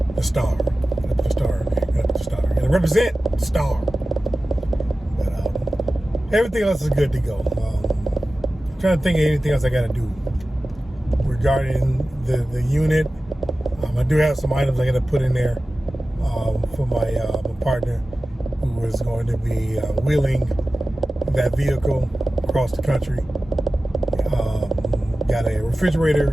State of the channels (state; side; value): normal; both; correlation 0.95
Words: The star. Gotta put the star. Gotta put the star. Gotta represent the star. But everything else is good to go. I'm trying to think of anything else I gotta do regarding the unit. I do have some items I gotta put in there for my partner who is going to be wheeling that vehicle across the country. Got a